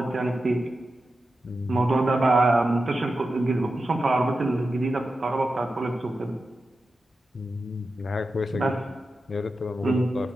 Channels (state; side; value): normal; both; correlation 0.91